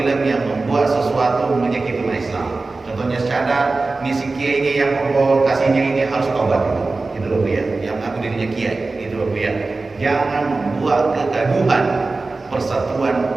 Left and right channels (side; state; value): left; quieter; 3.6 dB